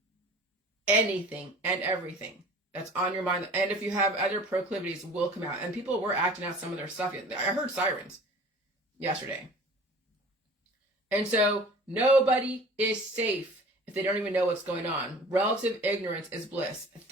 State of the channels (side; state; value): both; normal; correlation 0.45